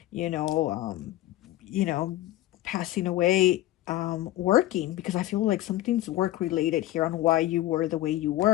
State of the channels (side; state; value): right; quieter; 15.3 dB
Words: you know, you know, passing away working, because I feel like something's work related here on why you were the way you